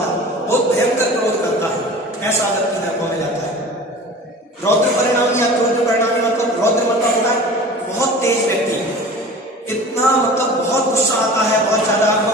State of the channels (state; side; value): normal; both; correlation 0.39